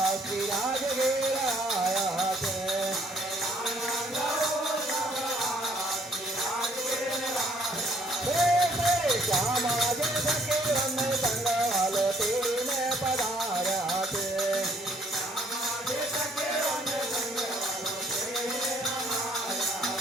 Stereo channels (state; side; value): normal; both; correlation 0.64